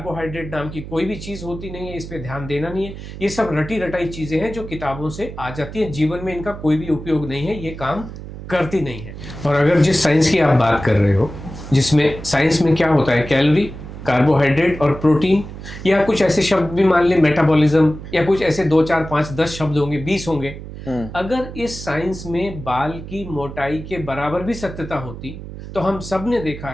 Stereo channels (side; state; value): right; noise; hum, 11 dB below the sound